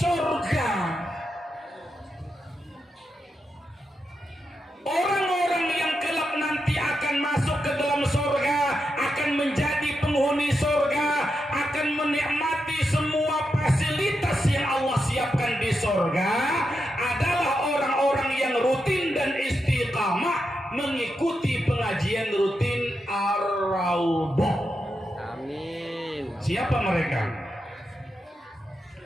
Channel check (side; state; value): both; normal; correlation 0.86